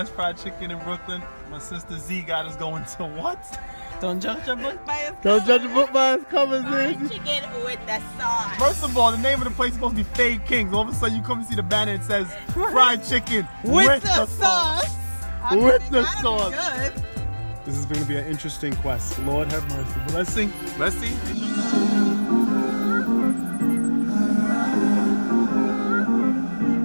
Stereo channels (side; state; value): both; inverted; correlation -1.00